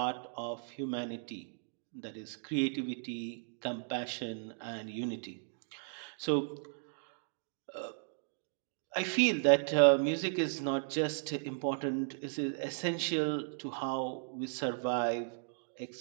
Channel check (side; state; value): left; silent; digital silence